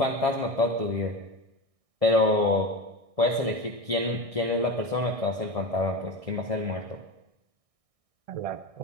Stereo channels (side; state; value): left; late; 1.6 ms